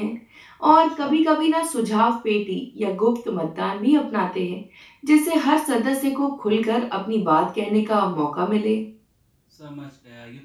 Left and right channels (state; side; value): identical; both; correlation 1.00